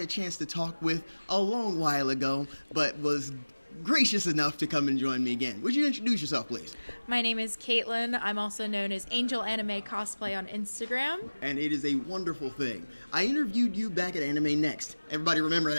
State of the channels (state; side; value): inverted; both; correlation -1.00